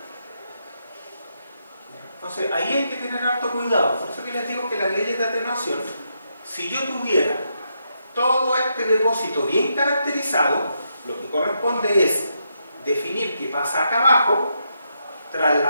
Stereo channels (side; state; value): both; inverted; correlation -0.81